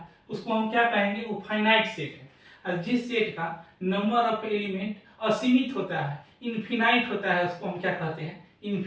उसको हम क्या कहेंगे, वो फाइनाइट सेट है। और जिस सेट का नंबर ऑफ एलिमेंट असीमित होता है, इनफिनाइट होता है, उसको हम क्या कहते हैं,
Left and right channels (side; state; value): both; identical; correlation 1.00